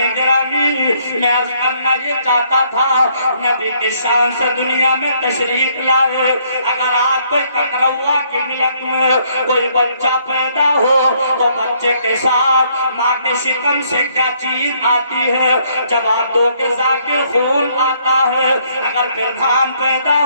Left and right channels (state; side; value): inverted; both; correlation -0.68